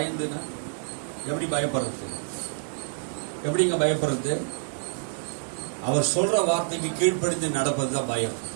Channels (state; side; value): silent; left; digital silence